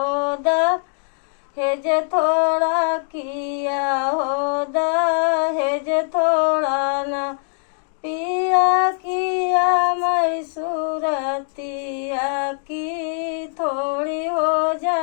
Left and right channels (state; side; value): silent; right; digital silence